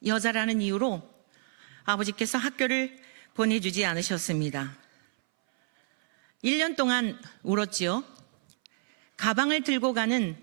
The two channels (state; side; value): silent; left; 59 dB below the other